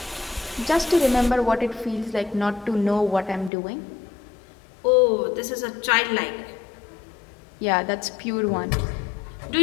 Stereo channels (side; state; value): right; drops out; at 3.5 s